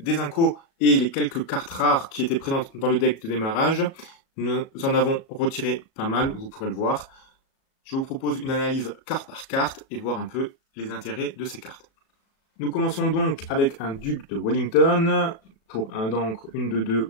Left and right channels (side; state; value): right; late; 36 ms